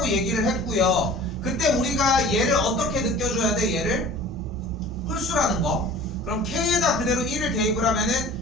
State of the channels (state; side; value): normal; both; correlation 0.43